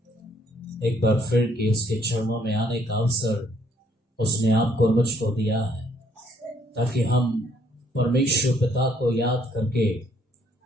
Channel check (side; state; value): both; normal; correlation 0.66